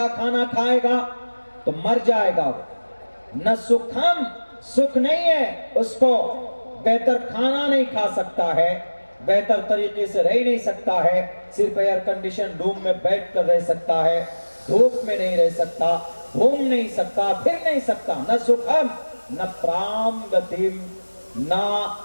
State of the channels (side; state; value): both; inverted; correlation -1.00